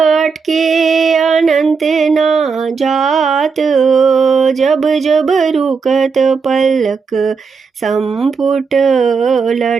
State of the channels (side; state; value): left; quieter; 5.3 dB